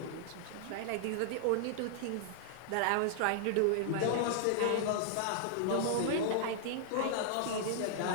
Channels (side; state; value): both; different; correlation -0.01